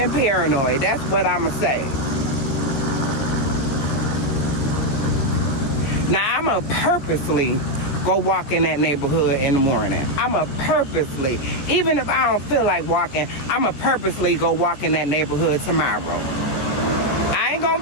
paranoid. That's what I'ma say. Now I'ma purposely go walk in that neighborhood in the morning. I'ma purposely, even if I don't feel like walking, I'ma purposely go walk in that neighborhood tomorrow. I ain't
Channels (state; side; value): late; right; 14 ms